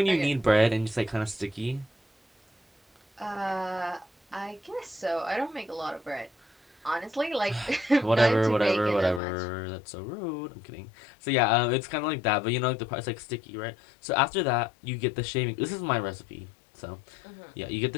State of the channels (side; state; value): right; drops out; at 9.2 s